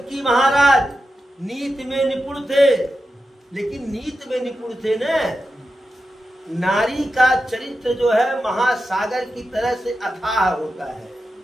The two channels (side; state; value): both; normal; correlation 0.90